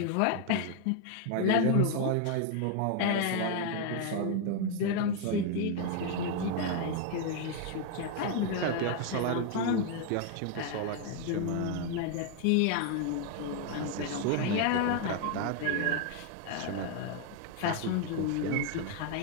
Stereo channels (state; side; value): different; both; correlation 0.00